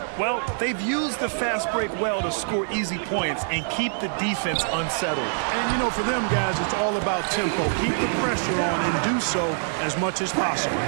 Well, they've used the fast break well to score easy points and keep the defense unsettled. And, you know, for them guys, it's all about tempo. Keep the pressure on and do so as much as possible.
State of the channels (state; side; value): silent; left; digital silence